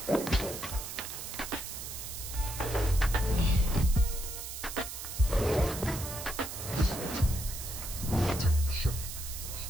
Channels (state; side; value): noise; right; hiss, 8 dB below the sound